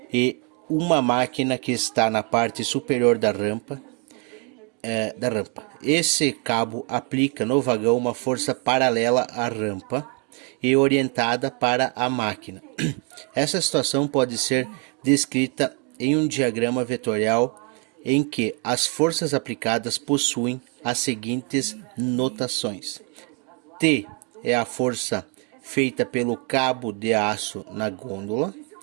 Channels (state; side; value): quieter; left; 33.6 dB